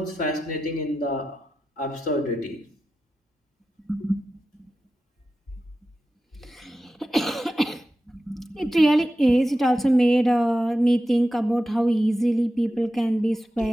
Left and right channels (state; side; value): normal; both; correlation 0.92